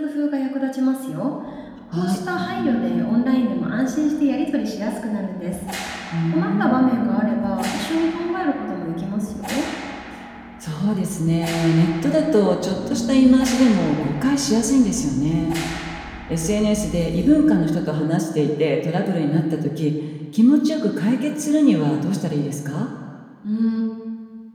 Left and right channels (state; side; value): identical; both; correlation 1.00